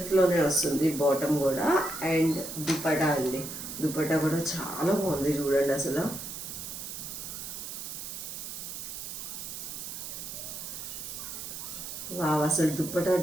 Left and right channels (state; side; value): noise; right; hiss, 8 dB below the sound